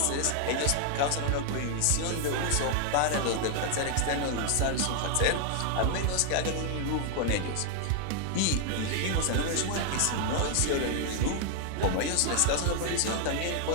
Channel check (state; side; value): different; both; correlation 0.00